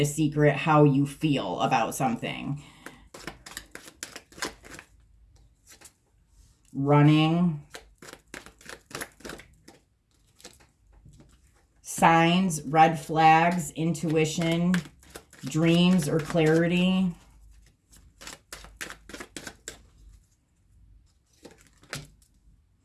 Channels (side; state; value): both; identical; correlation 1.00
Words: secret how you feel about something. Running. Signs, red flags, intuition, dreams, or clarity.